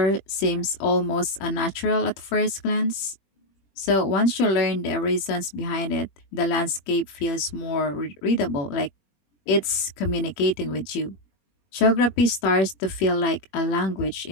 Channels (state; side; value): late; right; 21 ms